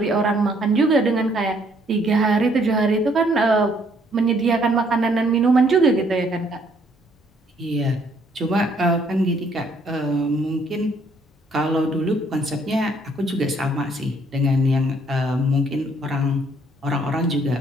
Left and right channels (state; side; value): normal; both; correlation 0.66